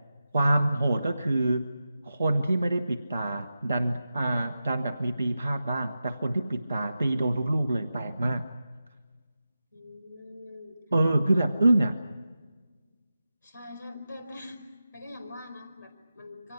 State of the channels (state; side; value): inverted; both; correlation -0.92